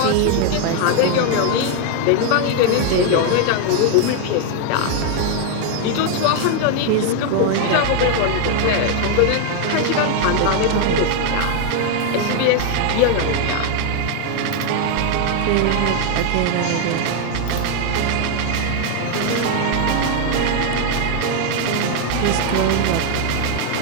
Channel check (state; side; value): different; both; correlation 0.01